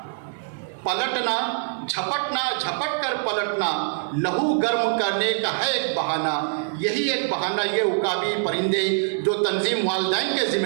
پلٹنا جھپٹنا جھپٹ کر پلٹنا، لہو گرم کرنے کا ہے ایک بہانہ۔ یہی ایک بہانہ یہ عقابی پرندے جو تنظیم والدین کے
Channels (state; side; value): silent; left; digital silence